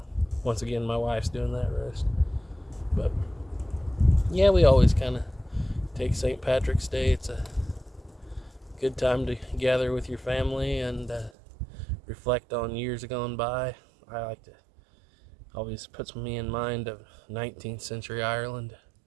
once again, my wife's doing that roast. But yeah, we always kind of take St. Patrick's Day. It's a good time to gather with your family and reflect on years gone by. I like to, always puts me in mind of 19th century Ireland.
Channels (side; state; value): left; drops out; at 11.3 s